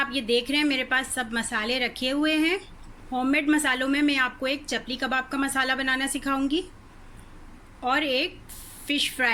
ये देख रहे हैं, मेरे पास सब मसाले रखे हुए हैं। होममेड मसालों में मैं आपको एक चपली कबाब का मसाला बनाना सिखाऊंगी और एक फ़िश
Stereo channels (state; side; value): identical; both; correlation 1.00